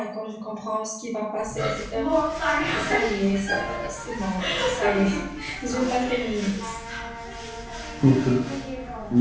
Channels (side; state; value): both; identical; correlation 1.00